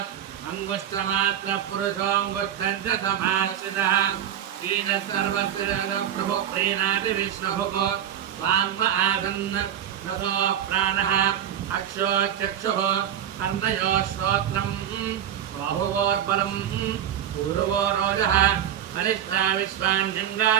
अङ्गुष्ठमात्रपुरुषोऽङ्गुष्ठम् च समाश्रितः बीजः सर्वस्य प्रभुः प्रीणाति विश्वभुः वाङ्म आसन् नतो प्राणः अक्षोचक्षुः कर्णयोः श्रोत्रम् बाहुवोर्बलम् पूर्वो रोजः वरिष्ठा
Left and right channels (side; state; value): left; quieter; 10.1 dB